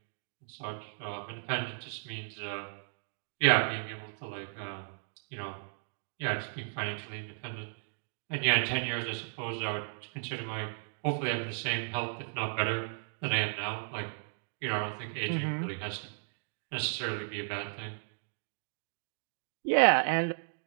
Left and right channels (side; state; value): left; silent; digital silence